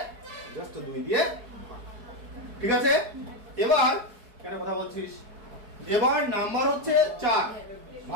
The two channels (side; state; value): left; late; 4.7 ms